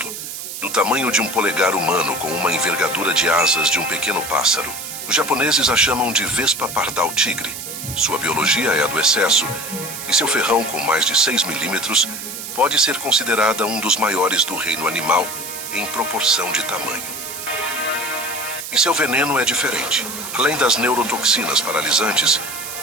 do tamanho de um polegar humano com uma envergadura de asas de um pequeno pássaro. Os japoneses a chamam de vespa pardal tigre. Sua biologia é a do excesso, e seu ferrão com mais de 6 milímetros pode ser considerada um dos maiores do reino animal em proporção de tamanho. E seu veneno é diferente. Além das neurotoxinas paralisantes,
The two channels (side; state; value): right; noise; hiss, 8 dB below the sound